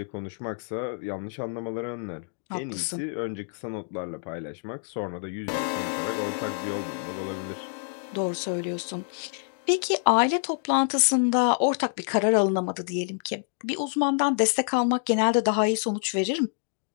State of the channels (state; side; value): silent; right; digital silence